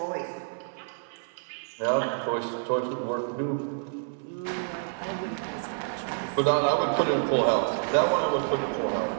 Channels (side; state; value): left; silent; 59 dB below the other